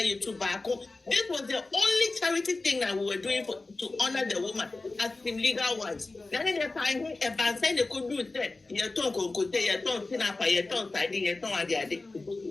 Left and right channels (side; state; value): right; quieter; 3.4 dB